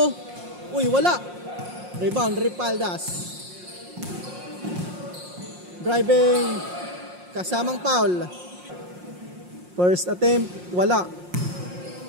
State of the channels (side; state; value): left; late; 5.6 ms